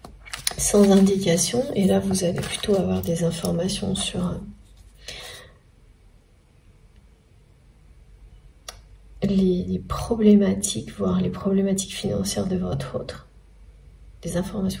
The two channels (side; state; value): both; identical; correlation 1.00